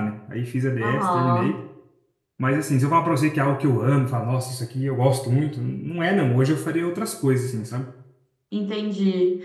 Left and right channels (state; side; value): identical; both; correlation 1.00